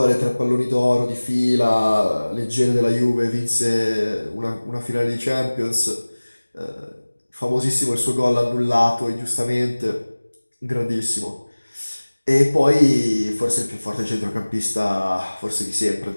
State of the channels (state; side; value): inverted; both; correlation -1.00